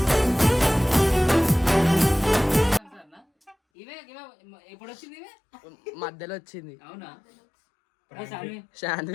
ఇవే ఎప్పుడు వచ్చింది? ఇవే మధ్యలో వచ్చింది. అవునా?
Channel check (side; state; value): right; drops out; at 3.6 s